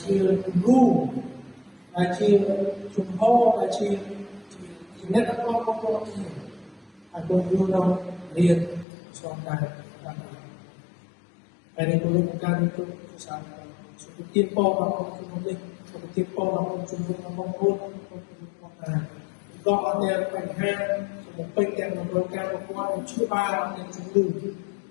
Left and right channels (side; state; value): right; drops out; at 8.8 s